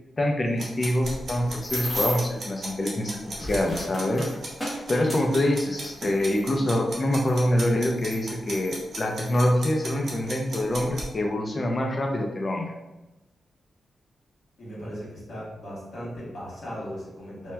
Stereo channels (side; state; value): both; normal; correlation 0.91